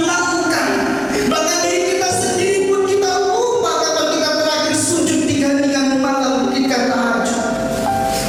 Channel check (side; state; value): both; identical; correlation 1.00